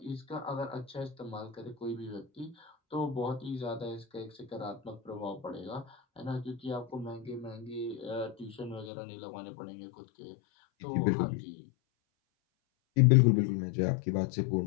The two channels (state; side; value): drops out; right; at 8.9 s